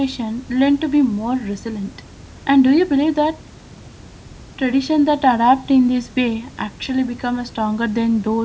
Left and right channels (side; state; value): both; identical; correlation 1.00